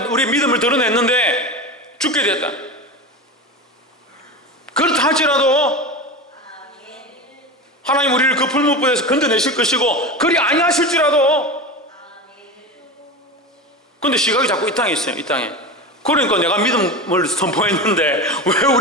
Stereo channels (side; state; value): both; normal; correlation 0.25